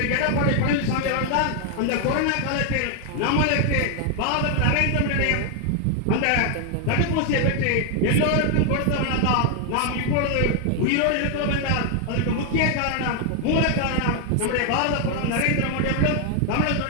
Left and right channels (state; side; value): different; both; correlation 0.00